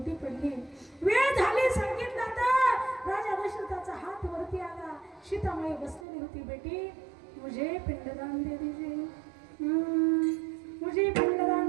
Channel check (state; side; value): drops out; left; at 6.1 s